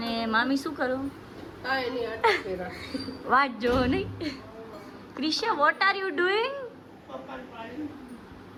મામી શું કરો વાત જો નહીં Krisha what are you doing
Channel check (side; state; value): both; identical; correlation 1.00